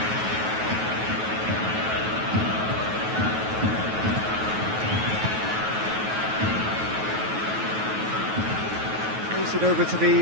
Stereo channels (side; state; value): left; late; 9.3 ms